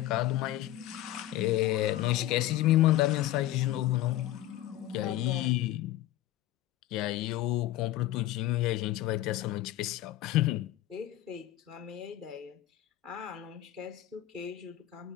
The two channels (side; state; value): right; quieter; 14.5 dB